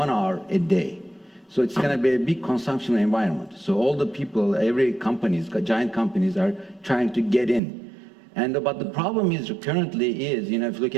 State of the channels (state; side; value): drops out; left; at 7.6 s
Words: hour a day. So it's going to be a big consumption environment. So all the people, every companies, giant companies are trying to get in. But the problem is currently is, if you look